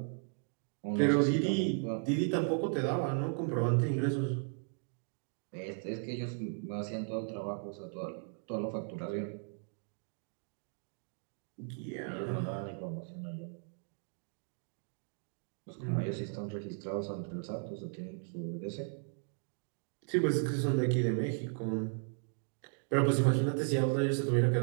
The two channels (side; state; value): left; silent; 54 dB below the other